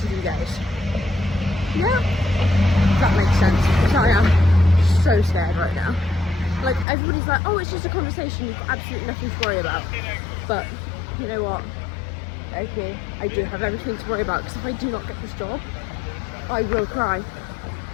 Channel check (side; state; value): right; drops out; at 6.9 s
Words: goes. Yeah, if that makes sense, because I am so scared right now. Like, everybody's like, oh, it's just a conversation, you've got absolutely nothing to worry about. But, you know what? Okay, I do have everything to worry about, because if I do not get this job, I will cry.